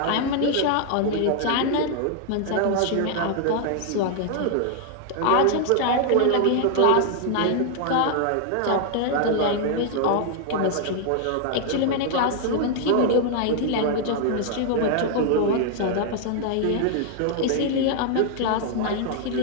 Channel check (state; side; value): different; both; correlation 0.00